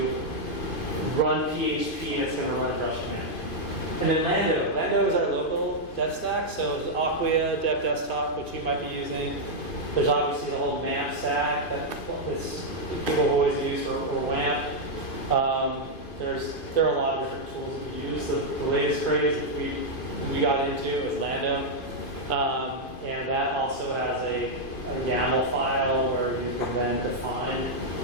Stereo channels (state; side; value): late; right; 2.5 ms